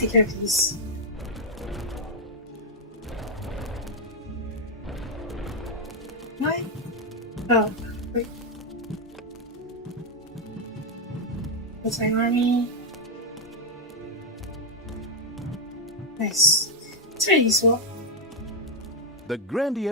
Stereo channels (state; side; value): normal; both; correlation 0.02